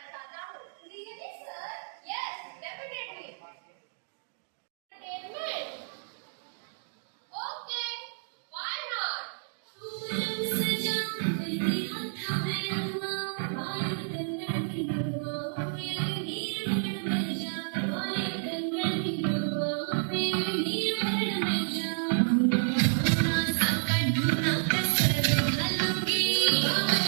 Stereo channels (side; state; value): left; silent; digital silence